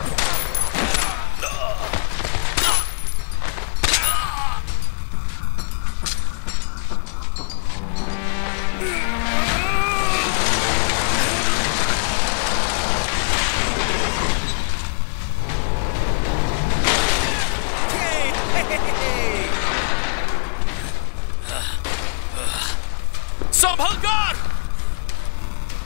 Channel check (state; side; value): silent; right; digital silence